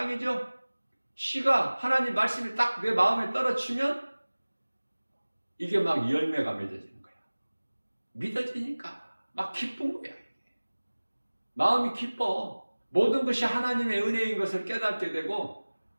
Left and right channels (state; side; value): inverted; both; correlation -1.00